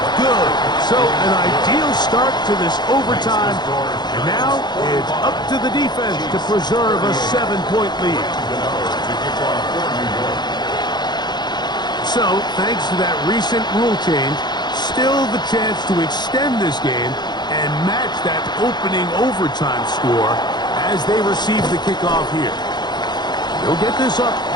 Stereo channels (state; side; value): late; right; 0.21 ms